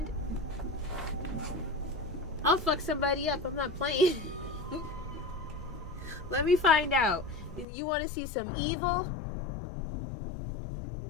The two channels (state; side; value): drops out; right; at 7.7 s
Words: I'll fuck somebody up, I'm not playing. Let me find out. You want to see some evil?